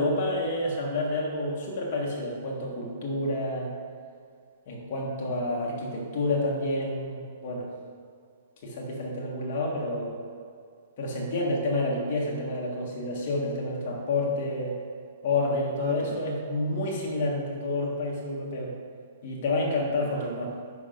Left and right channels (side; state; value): both; inverted; correlation -0.47